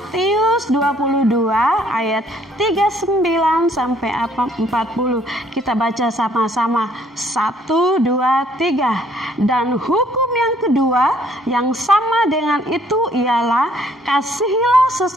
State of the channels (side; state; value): both; normal; correlation 0.63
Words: 22 ayat 39 sampai 40. Kita baca sama-sama. 1, 2, 3. Dan hukum yang kedua yang sama dengan itu ialah kasihilah